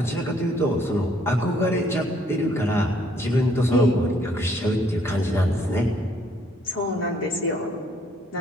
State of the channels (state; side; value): normal; both; correlation 0.65